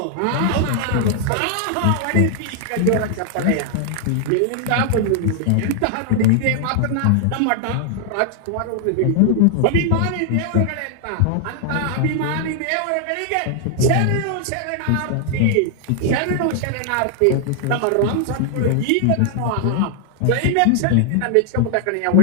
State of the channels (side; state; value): both; different; correlation 0.00